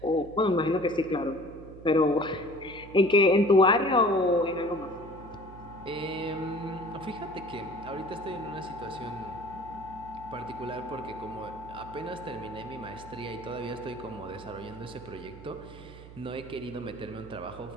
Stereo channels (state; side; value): noise; right; hum, 17 dB below the sound